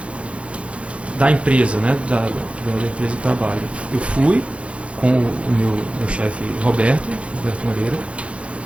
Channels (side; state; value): left; late; 0.061 ms